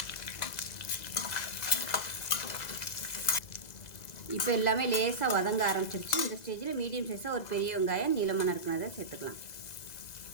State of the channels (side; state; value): right; late; 2.0 ms